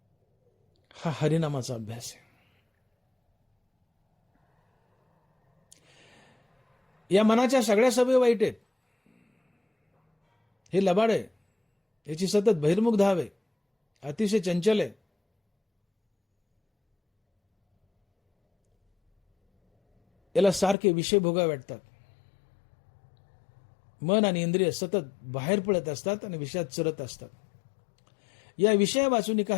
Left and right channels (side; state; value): right; drops out; at 20.8 s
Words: हा हरिनामाचा अभ्यास आहे. या मनाच्या सगळ्या सवयी वाईट आहेत. हे लबाड आहे, याची सतत बहिर्मुख धाव आहे, अतिशय चंचल आहे. याला सारखे विषय भोगावे वाटतात. मन आणि इंद्रिय सतत बाहेर पडत असतात आणि विषयात चरत असतात. या विषया वाचून